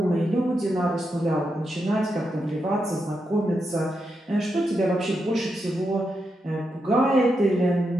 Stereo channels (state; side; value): normal; both; correlation 0.85